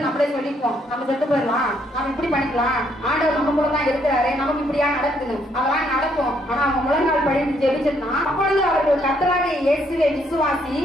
நம்மளே சொல்லிப்போம், நம்ம செத்து போயிடலாம், நம்ம இப்படி பண்ணிக்கலாம், ஆண்டவர் நம்ம கூட தான் இருக்கிறாரு, நமக்கு இப்படியா நடக்குது, அதெல்லாம் நடக்கும். ஆனா அவங்க முழங்கால் படித்து ஜெபிச்சிருந்தா, அப்பொழுது அவர்கள் கர்த்தராகிய இயேசுவை விசுவாசி,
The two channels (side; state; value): both; normal; correlation 0.71